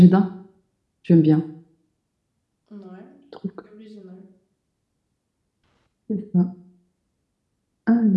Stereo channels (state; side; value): identical; both; correlation 1.00